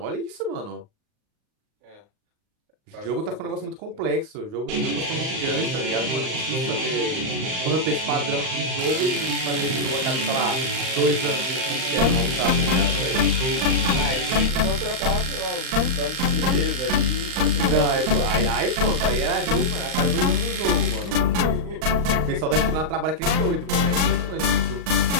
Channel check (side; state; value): left; late; 39 ms